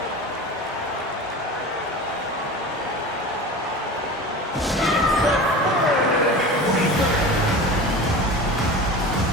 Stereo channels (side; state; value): both; normal; correlation 0.33